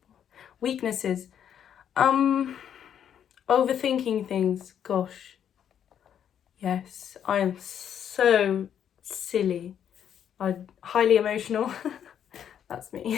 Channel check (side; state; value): right; quieter; 9.1 dB